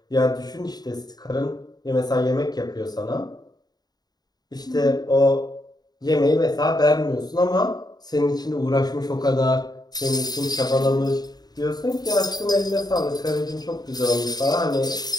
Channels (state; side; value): late; right; 0.19 ms